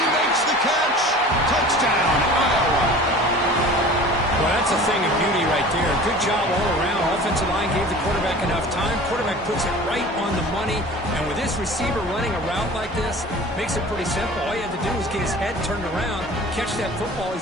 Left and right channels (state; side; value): normal; both; correlation 0.41